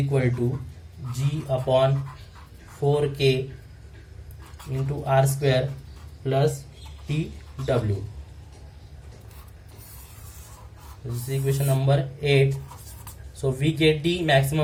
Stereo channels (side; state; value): both; identical; correlation 1.00